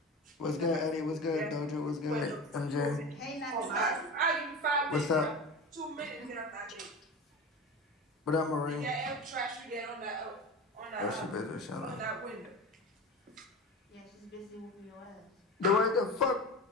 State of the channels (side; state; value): both; normal; correlation 0.30